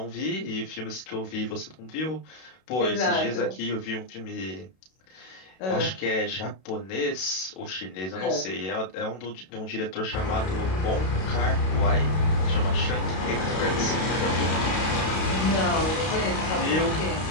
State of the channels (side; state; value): right; late; 32 ms